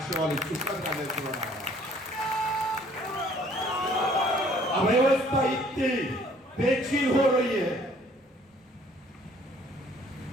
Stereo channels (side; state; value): both; normal; correlation 0.58